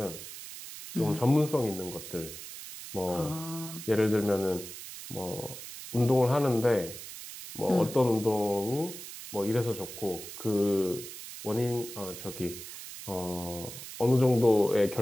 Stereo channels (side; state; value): right; noise; hiss, 12 dB below the sound